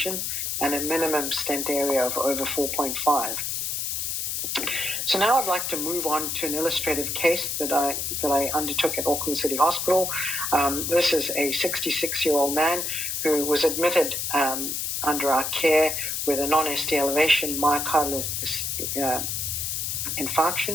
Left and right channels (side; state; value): left; noise; hiss, 2 dB below the sound